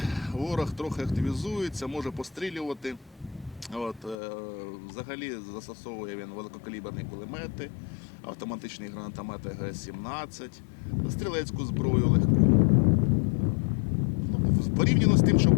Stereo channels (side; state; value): right; drops out; at 4.2 s